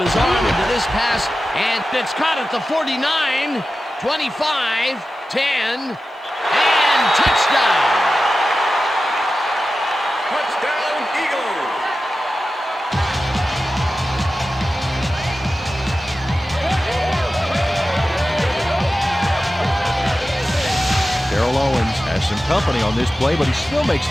arm into this pass, and it's caught at the 49, 25, 10, and touchdown. Touchdown, Eagles! Darrell Owens has some company on this play, but he still makes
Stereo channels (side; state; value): both; normal; correlation 0.93